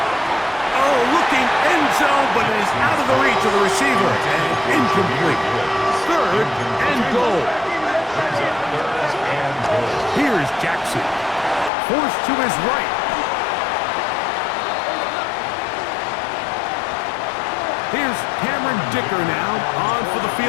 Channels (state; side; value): drops out; right; at 11.7 s